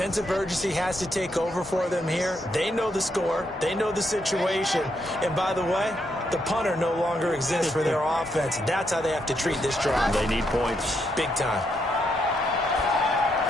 of urgency has to take over for them here. They know the score. They know the situation. And by the way, the punter no longer exists for their offense. That's how they have to treat this drive. They need points. Big time.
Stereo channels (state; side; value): normal; both; correlation 0.78